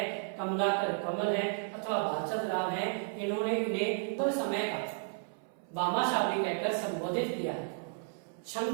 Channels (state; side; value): silent; left; 56 dB below the other